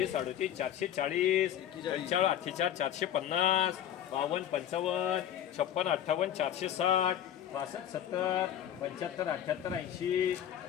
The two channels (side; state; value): right; quieter; 10.4 dB